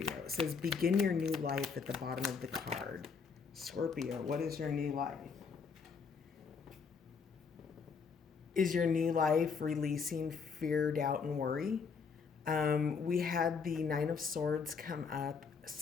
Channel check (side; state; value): right; quieter; 5.6 dB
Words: It says begin your new life at the bottom of the card. Scorpio, what is your new life? Is your new life releasing fear, doubt, and worry? We had the Nine of Swords come up